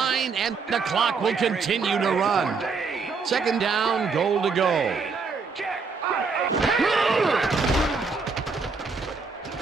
and the clock will continue to run. 2nd down, goal to go.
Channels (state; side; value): quieter; left; 4.8 dB